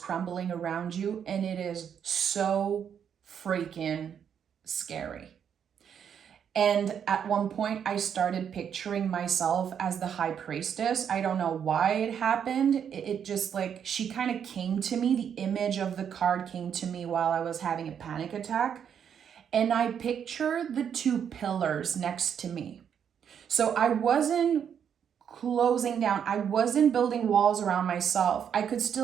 around you, and it is so freaking scary. And at one point, I started picturing myself as the High Priestess. I don't know why it happened. It just she kind of came to me. The image of the card came to me while I was having a panic attack. And I pictured the 2 pillars next to me. So I wasn't closing down. I wasn't building walls around myself. I could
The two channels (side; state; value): left; quieter; 8.1 dB